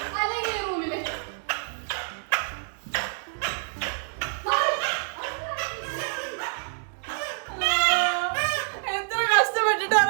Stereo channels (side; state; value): left; silent; digital silence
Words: അല്ലെങ്കിൽ റൂമില്. എത്ര